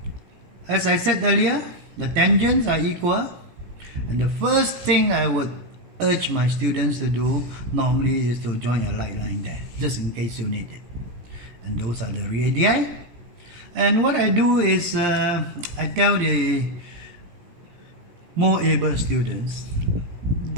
as I said earlier, the tangents are equal, and the first thing I would urge my students to do normally is to join a light line there, just in case you need it. And those are the radii. And what I do is I tell the more able students,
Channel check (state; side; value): late; left; 17 ms